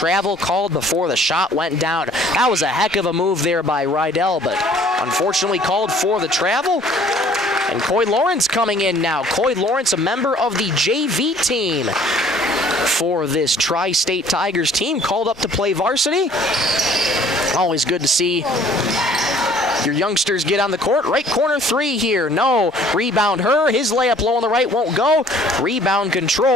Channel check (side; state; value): both; normal; correlation 0.56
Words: called before the shot went down. That was a heck of a move there by Rydell, but unfortunately called for the travel. And Coy Lawrence coming in now. Coy Lawrence, a member of the JV team for this Tri-State Tigers team, called up to play varsity. Always good to see your youngsters get on the court. Right corner three here. No. Rebound Herr. His layup low on the right won't go. Rebound